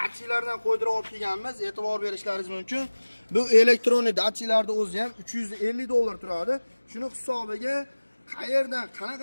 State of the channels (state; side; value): inverted; both; correlation -1.00